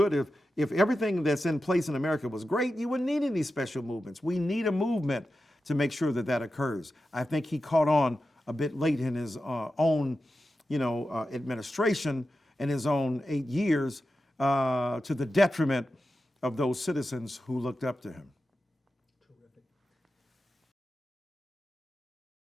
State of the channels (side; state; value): both; normal; correlation 0.91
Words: if everything that's in place in America was great, you wouldn't need any special movements. We need a movement to make sure that that occurs. I think he caught on a bit late in his own, administration and his own 8 years to the detriment of those citizens who looked up to him. Terrific.